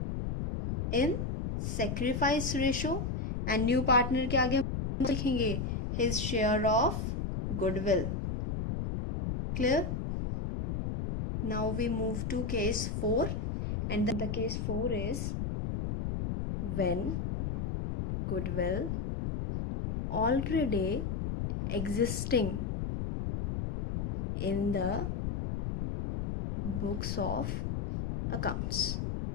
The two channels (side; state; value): left; noise; rumble, 2 dB below the sound